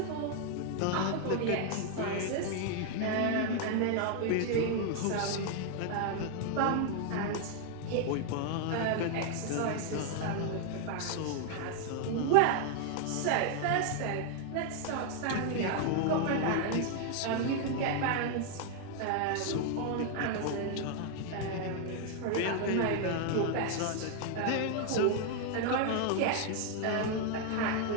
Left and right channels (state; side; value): different; both; correlation 0.00